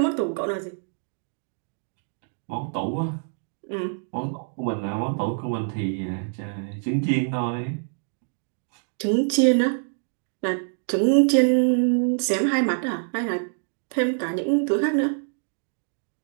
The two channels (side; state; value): left; silent; 61 dB below the other